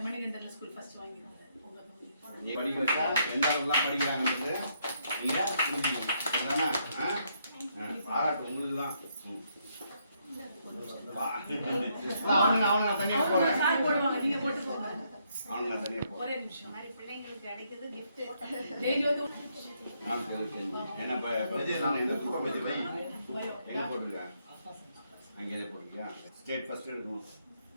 மணிகண்டன் ஸ்கூல் ஃபர்ஸ்ட் வாங்கியிருந்தாரு. நீ படிக்க வச்சா எந்த அளவுக்குலாம் படிக்கிறாங்கன்றது நீங்க புரிஞ்சுக்கணும். அதானே? பாராட்டு உங்களுக்கு தான். அவனுங்க தனியா போறேன். சார் போடுவாங்க, நீங்க போட்டு போங்க. அவனுங்க தனியா போறேன். ஒரே நிமிஷம். மாதிரி பிள்ளைங்களுக்கு கிடைக்குது gift. டெய்லி வந்து நான் தெரிஞ்சு என்ன நான் எந்த கூட வச்சு வை என்ன போட்டிருக்கேன் அங்கே எதை போட்டிருக்கியா? ஸ்டேட் ஃபர்ஸ்ட் எடுக்கணும்.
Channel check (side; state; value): both; inverted; correlation -0.74